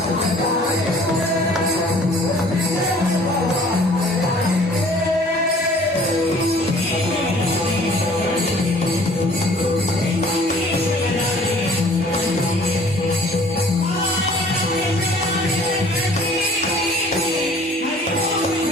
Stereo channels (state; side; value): normal; both; correlation 0.53